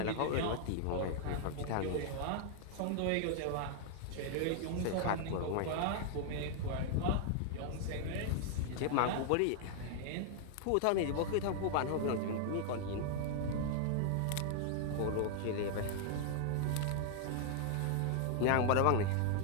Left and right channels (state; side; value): different; both; correlation -0.01